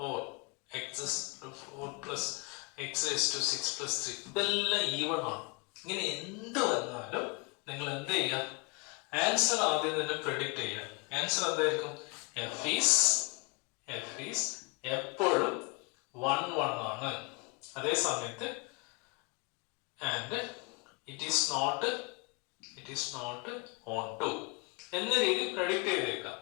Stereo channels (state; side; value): quieter; right; 30.5 dB